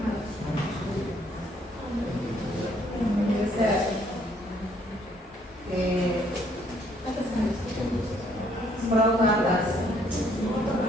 Scroll ke atas.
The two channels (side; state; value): both; normal; correlation 0.65